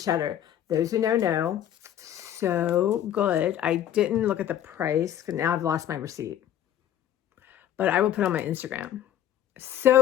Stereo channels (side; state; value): right; quieter; 11.1 dB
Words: cheddar. Those who know, so good. I didn't look at the price because now I've lost my receipt. But I will put it on my Instagram.